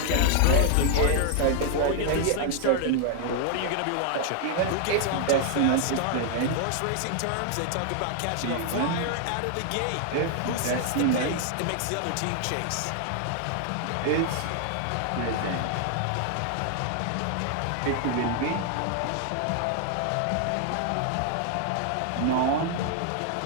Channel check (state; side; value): different; both; correlation 0.00